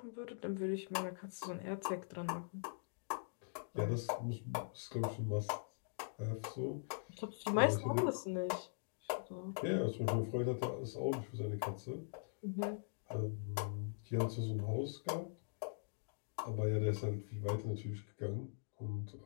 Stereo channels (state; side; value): silent; right; digital silence